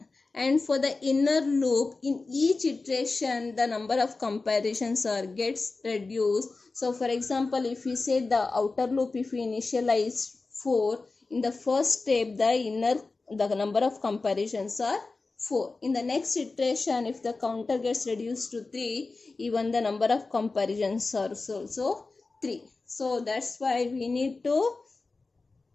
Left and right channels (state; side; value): quieter; right; 3.7 dB